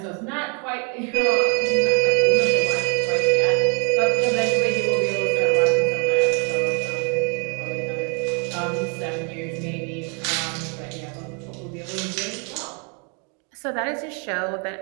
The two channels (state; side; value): quieter; left; 36.7 dB